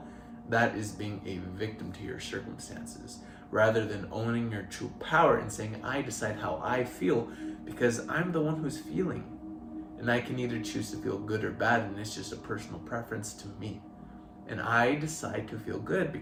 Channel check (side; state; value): both; identical; correlation 1.00